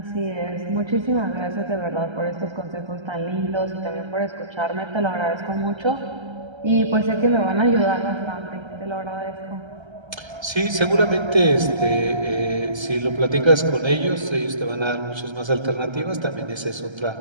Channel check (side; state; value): left; late; 1.3 ms